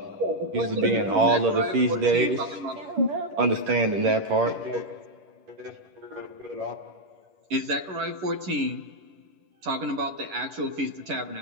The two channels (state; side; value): late; left; 11 ms